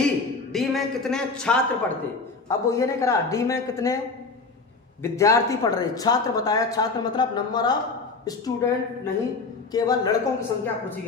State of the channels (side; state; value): right; quieter; 4.1 dB